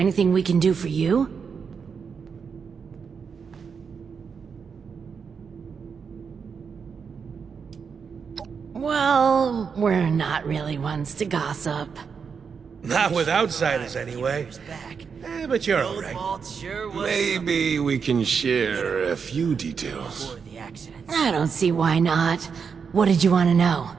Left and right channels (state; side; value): quieter; left; 6.1 dB